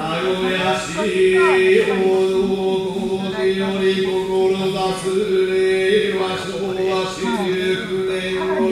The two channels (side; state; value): both; identical; correlation 1.00